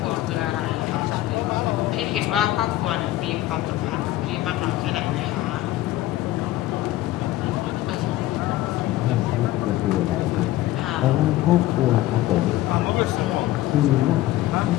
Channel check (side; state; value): right; quieter; 15.6 dB